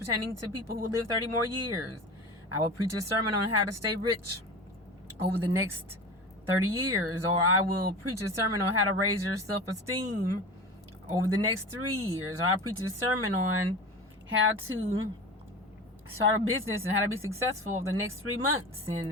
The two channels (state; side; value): normal; both; correlation 0.32